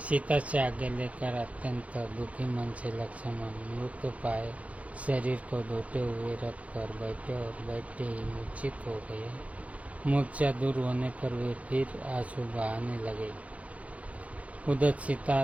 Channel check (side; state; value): left; late; 0.066 ms